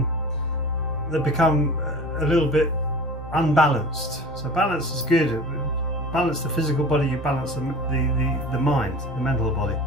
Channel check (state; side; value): normal; both; correlation 0.38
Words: they become a little bit unbalanced. So balance is good. Balance the physical body, you balance the mind, the mental body.